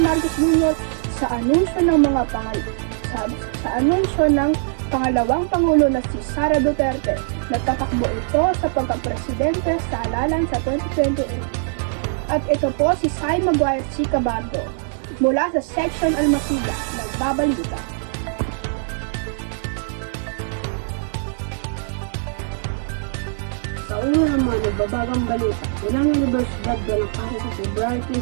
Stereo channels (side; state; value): left; silent; digital silence